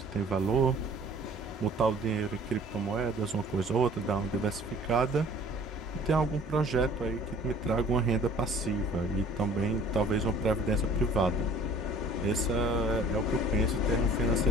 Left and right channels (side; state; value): both; normal; correlation 0.51